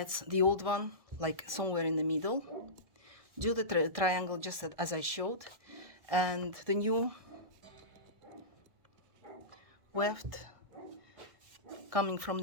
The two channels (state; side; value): late; left; 1.6 ms